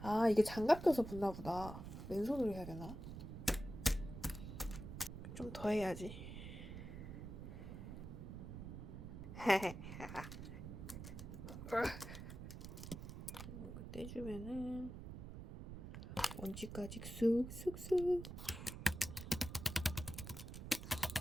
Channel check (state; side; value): noise; right; rumble, 9 dB below the sound